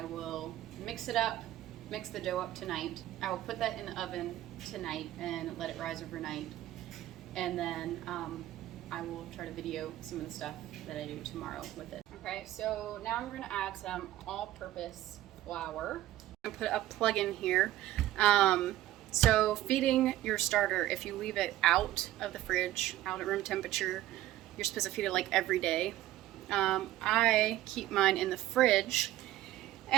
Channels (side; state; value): left; quieter; 14.5 dB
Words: will mix it up, mix the dough up tonight. I will put that in the oven tonight and let it rise overnight. And then I will try to video some of the stuff that I do tomorrow with it. Okay, so now I'm gonna add some all-purpose flour. I'm gonna put a plug in here. So feeding your starter, if you leave it out of the fridge, out at room temperature, you're supposed to feed it like every day. I keep mine in the fridge,